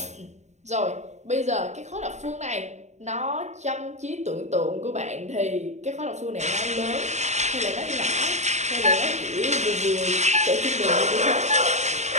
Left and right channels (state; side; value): late; left; 0.33 ms